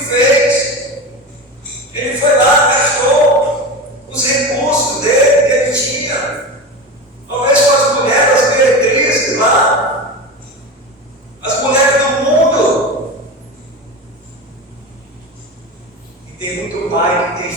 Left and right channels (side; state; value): both; normal; correlation 0.25